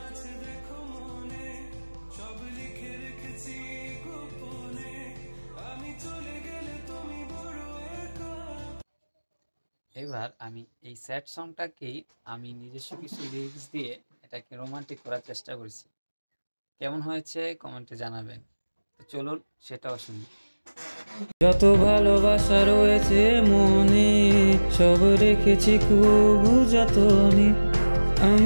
আছে দেখো মনে, সব লিখে রেখেছি গোপনে, আমি চলে গেলে তুমি বড় একা। এবার আমি এই স্যাড সংটাকেই আমি নিজস্ব কিছু লিরিক্স দিয়ে এটাকে রোমান্টিক করার চেষ্টা করেছি। কেমন হয়েছে কমেন্টে জানাবেন। তো চলুন সেটাও শুনি। যত ভালোবাসা রয়েছে মনে, সব রেখেছি খুব যতনে।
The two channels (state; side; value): inverted; both; correlation -1.00